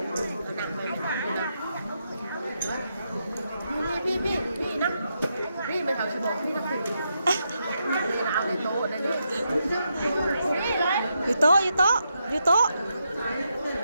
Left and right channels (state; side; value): inverted; both; correlation -0.82